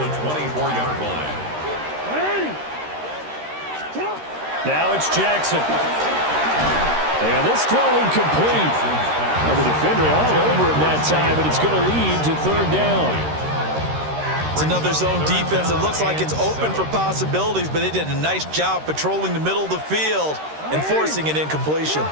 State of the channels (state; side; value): late; left; 13 ms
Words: the 24-yard line. Now it's Jackson. And this throw incomplete. Now the defender all over him that time, and it's going to lead to third down. It's another zone defense. It looks like it's open for possibilities, but they did a nice job patrolling the middle of the field and forcing an incompletion.